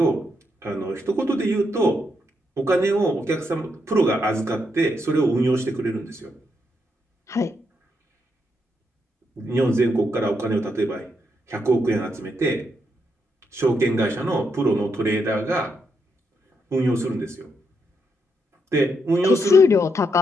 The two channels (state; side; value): normal; both; correlation 0.80